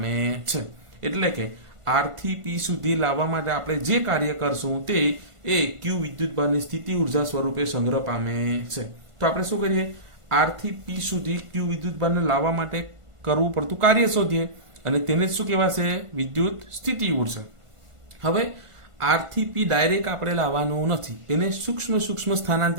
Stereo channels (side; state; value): left; late; 1.5 ms